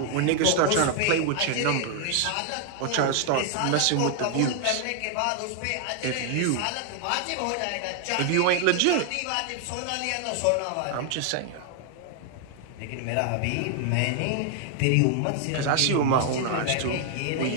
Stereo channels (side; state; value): both; different; correlation 0.00